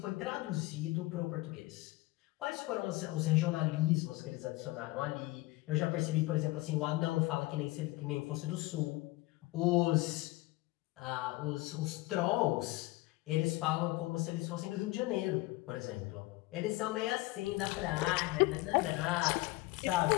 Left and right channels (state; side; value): quieter; right; 20.2 dB